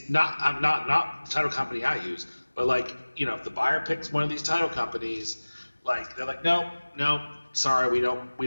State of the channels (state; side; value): inverted; both; correlation -1.00